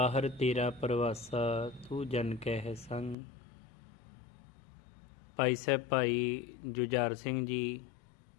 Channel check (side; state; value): right; drops out; at 3.2 s